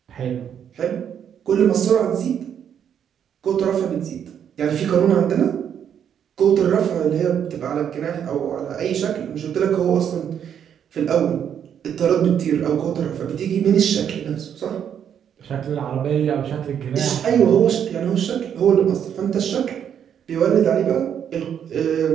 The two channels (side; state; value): left; quieter; 8.7 dB